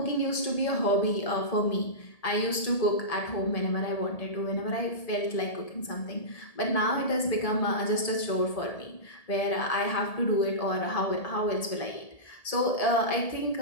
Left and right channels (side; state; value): right; late; 1.7 ms